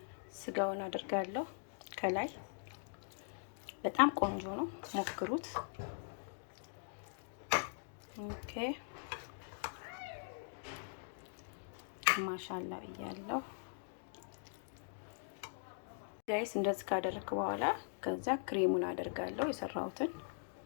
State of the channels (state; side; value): silent; right; digital silence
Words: ስጋውን አደርጋለሁ ከላይ። በጣም ቆንጆ ነው፣ ሞክሩት። ኦኬ ማሻአላ ብያለሁ ጋይስ። እንደዚህ ካደረኩ በኋላ ከዛ ክሬሙን አደርጋለሁ የሰራሁትን።